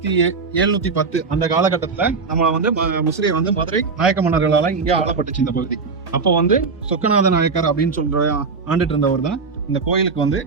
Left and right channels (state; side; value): quieter; left; 4.7 dB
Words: அந்த காலகட்டத்துல நம்ம முசிறியை மதுரை நாயக்க மன்னர்களால இங்கே ஆளப்பட்டுச்சு இந்த பகுதி. அப்போ சொக்கநாத நாயக்கர் அப்படின்னு சொல்ற ஆண்டுட்டு இருந்தவர் தான் இந்த கோயிலுக்கு